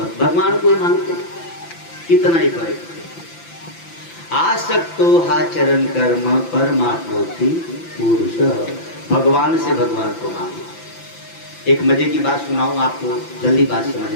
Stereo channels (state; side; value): late; right; 5.9 ms